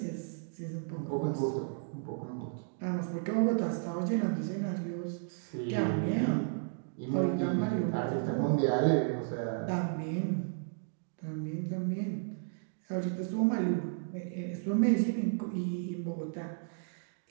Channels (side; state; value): left; silent; digital silence